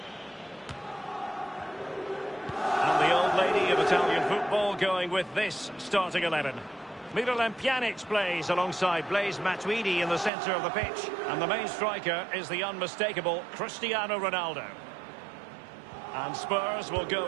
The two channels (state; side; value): drops out; left; at 10.3 s